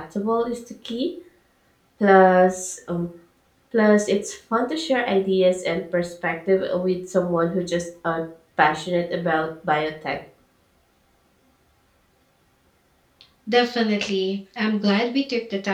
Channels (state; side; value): identical; both; correlation 1.00